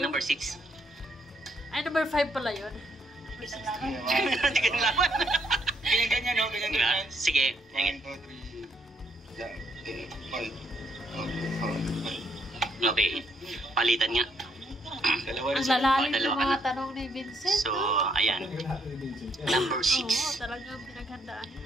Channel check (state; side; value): normal; both; correlation 0.72